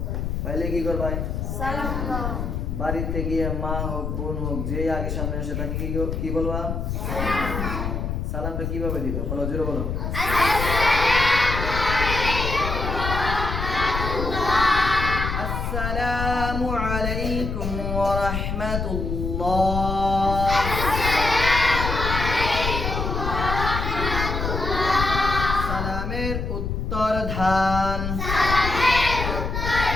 পাইলে কি করবাই? সালাম দাও। বাড়িতে গিয়ে মা হোক বোন হোক যে আগে সামনে আসে তাকে কি বলবা? সালামটা কিভাবে দিবা? বলো, জোরে বলো। আসসালামু আলাইকুম ওয়া রাহমাতুল্লাহ। সালামের উত্তর ধান।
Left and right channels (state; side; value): noise; left; rumble, 3 dB below the sound